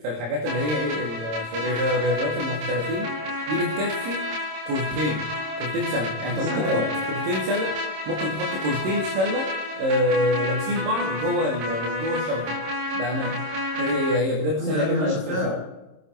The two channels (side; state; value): left; late; 26 ms